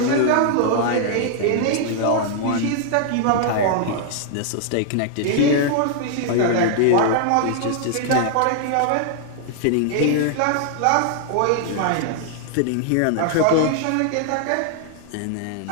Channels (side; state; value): both; different; correlation 0.00